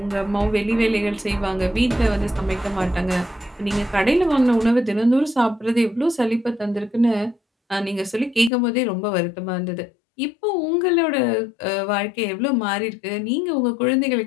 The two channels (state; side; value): drops out; right; at 8.5 s